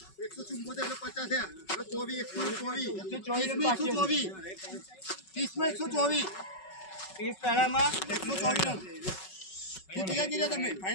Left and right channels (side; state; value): right; late; 5.3 ms